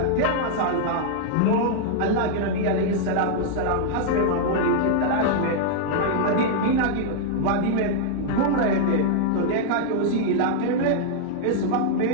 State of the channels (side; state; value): both; different; correlation -0.01